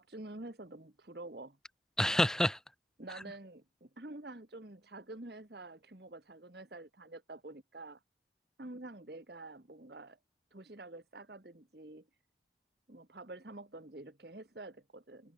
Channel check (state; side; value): normal; both; correlation 0.80